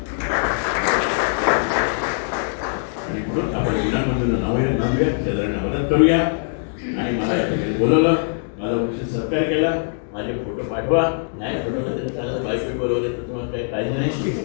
आणि म्हणून आपण विनामूल्य मदत करूया. आणि मला या ठिकाणी बोलवलं, माझा उचित सत्कार केला, माझे फोटो पाठवा, नाही फोटो तरी चालत, बायको बोलवले तर तुम्हाला काही काळजी नाही.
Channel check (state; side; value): silent; right; digital silence